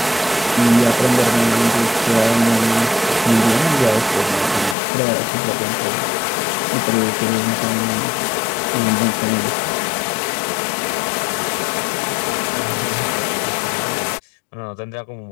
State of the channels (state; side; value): drops out; right; at 4.8 s